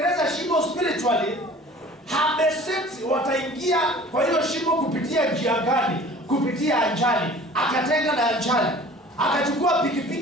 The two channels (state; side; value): normal; both; correlation 0.46